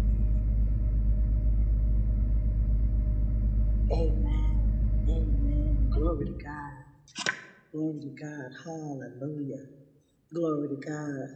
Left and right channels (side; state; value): both; identical; correlation 1.00